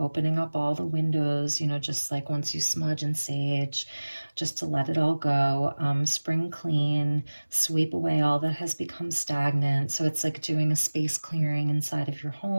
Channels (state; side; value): inverted; both; correlation -1.00